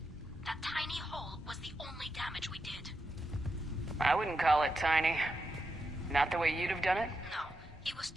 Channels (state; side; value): normal; both; correlation 0.86